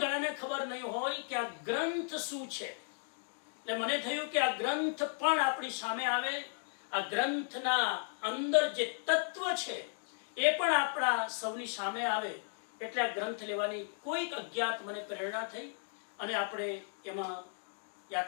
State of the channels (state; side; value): silent; right; 54 dB below the other